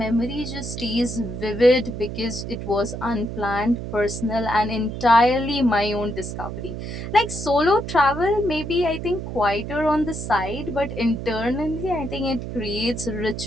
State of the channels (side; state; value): right; noise; hum, 7 dB below the sound